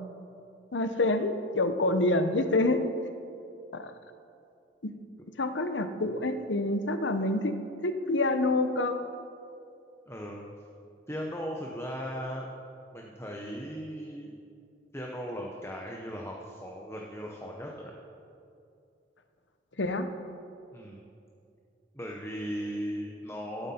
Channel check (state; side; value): normal; both; correlation 0.21